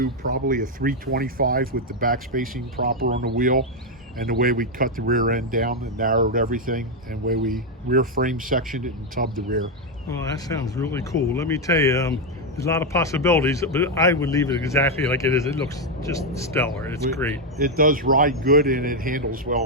probably a 325 with the back spacing proper on the wheel, and the way we cut the rear end down and narrowed everything, and the way we rear frame sectioned it and tubbed the rear. Well, that sounds really cool. Let me tell you, there's a lot of possibilities, but I would leave it exactly like it is. It looks just stellar. It's great. It does ride good, and it handles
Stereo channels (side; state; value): both; normal; correlation 0.03